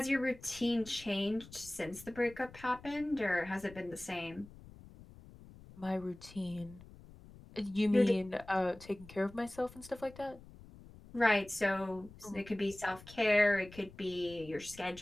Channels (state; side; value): noise; left; rumble, 19 dB below the sound